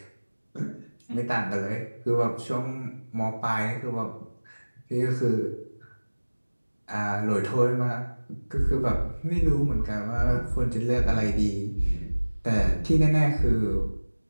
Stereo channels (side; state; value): both; inverted; correlation -1.00